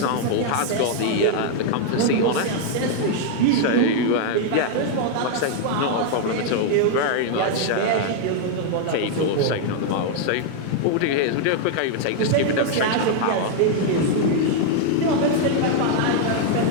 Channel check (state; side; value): different; both; correlation 0.00